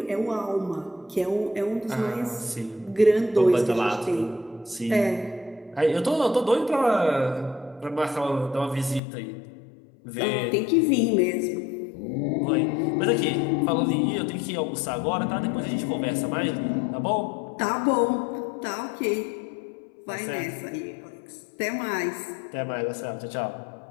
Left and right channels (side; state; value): right; drops out; at 9.0 s